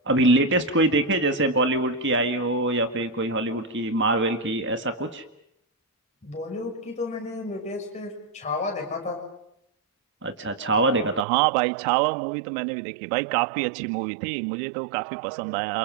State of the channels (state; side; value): drops out; left; at 11.2 s